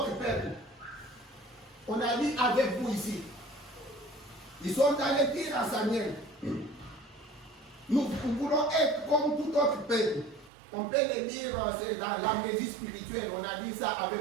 peuple. On a dit avec vous ici. Ils sont allés dire à Samuel, nous voulons être comme tout autre peuple. On peut le lire dans l'amnésie spirituelle, on a dit ça avec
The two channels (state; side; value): drops out; left; at 10.5 s